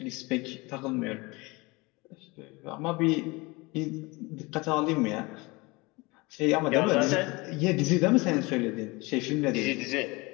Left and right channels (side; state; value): right; quieter; 24.6 dB